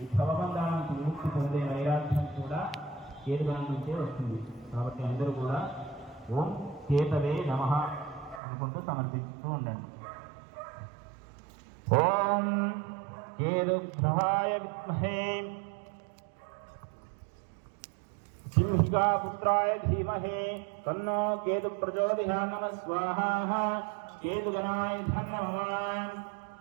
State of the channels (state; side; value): drops out; left; at 8.4 s